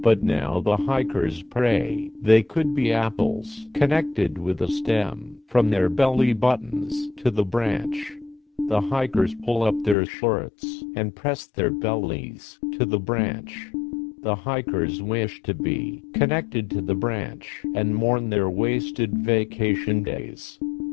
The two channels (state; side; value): drops out; right; at 10.0 s